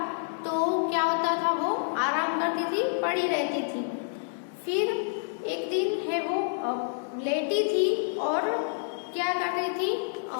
तो क्या होता था वो आराम करती थी, पड़ी रहती थी। फिर एक दिन है वो लेटी थी और क्या कर रही थी,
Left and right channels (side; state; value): right; silent; 59 dB below the other